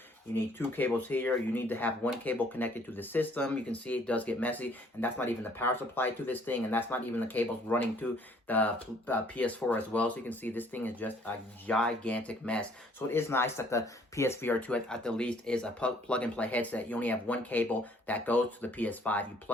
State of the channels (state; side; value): normal; both; correlation 0.61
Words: you need two cables here, you need to have one cable connected to the system. You can see it does get messy, and that's not even the power supply to this thing, and that's not even the cables running to the PS4 as well. So you can see this thing is just a gigantic mess. So it is nice that the PSVR2 at the least is a plug-and-play headset. You only have one cable that goes to the PS5. You